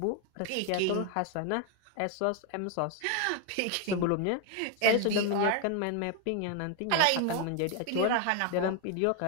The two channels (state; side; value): different; both; correlation 0.01